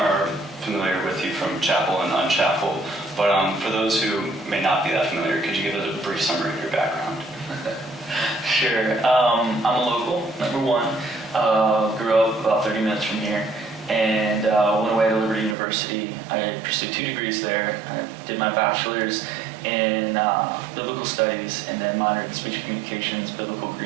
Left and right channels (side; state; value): left; drops out; at 15.6 s